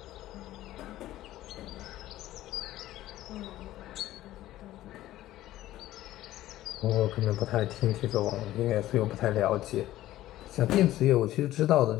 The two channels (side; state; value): right; quieter; 14.7 dB